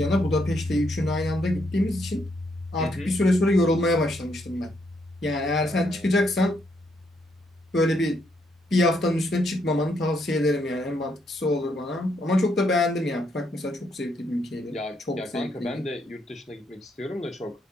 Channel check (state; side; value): normal; both; correlation 0.75